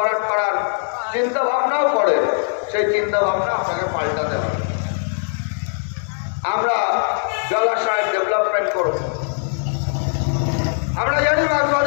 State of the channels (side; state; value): right; silent; digital silence